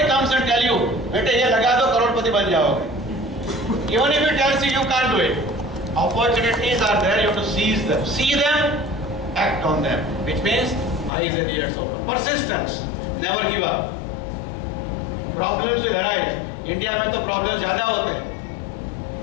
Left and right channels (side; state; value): right; drops out; at 11.1 s